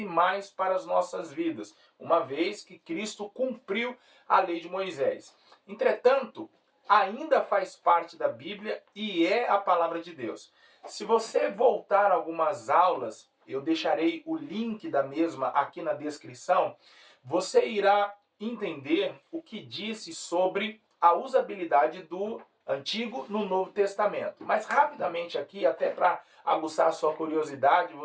mais para as nossas vidas, uma vez que Cristo cumpriu a lei de Moisés. Entretanto, ainda faz parte da Bíblia e é a palavra de Deus. Se você voltar algumas aulas, eu deixarei o link da mesma aqui na descrição, você irá entender o que disse sobre a usabilidade do Antigo no Novo Testamento. Mas rapidamente aqui, até para aguçar a sua curiosidade,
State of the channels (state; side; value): identical; both; correlation 1.00